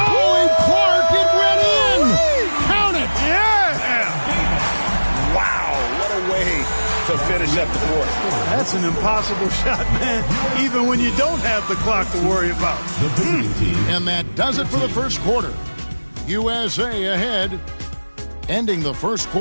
Finish up the fourth. That's an impossible shot, man, even when you don't have the clock to worry about. And that does it for the first quarter. USA ahead, ending the first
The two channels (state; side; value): inverted; both; correlation -1.00